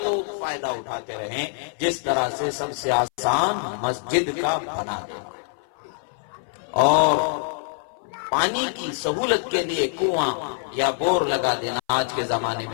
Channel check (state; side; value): silent; right; 59 dB below the other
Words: لوگ فائدہ اٹھاتے رہیں۔ جس طرح سے سب سے آسان مسجد کا بنا دینا، اور پانی کی سہولت کے لیے کنواں یا بور لگا دینا، آج کے زمانے